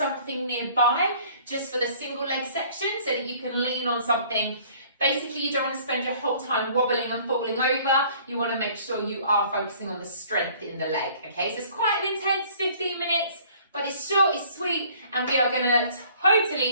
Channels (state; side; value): inverted; both; correlation -0.54